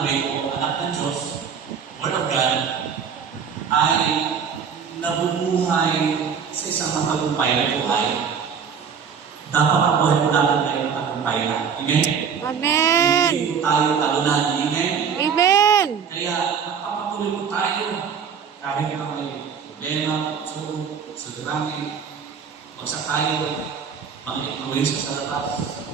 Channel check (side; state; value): left; quieter; 6.9 dB